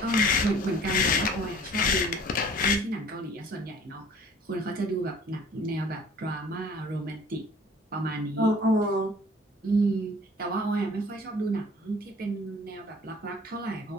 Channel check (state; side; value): normal; both; correlation 0.51